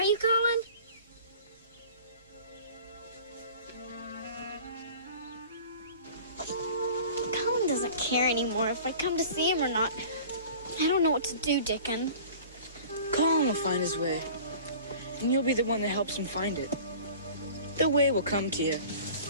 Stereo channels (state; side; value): inverted; both; correlation -0.43